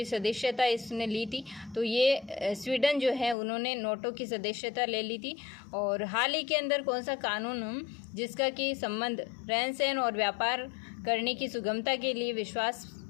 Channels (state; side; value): drops out; right; at 3.4 s